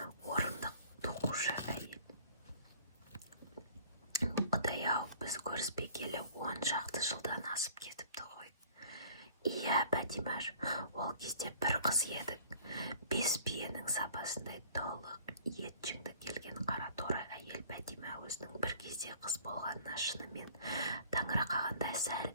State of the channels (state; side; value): inverted; both; correlation -0.51